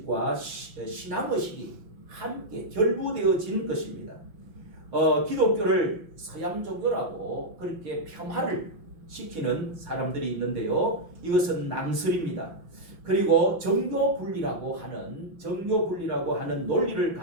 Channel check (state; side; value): late; left; 5.5 ms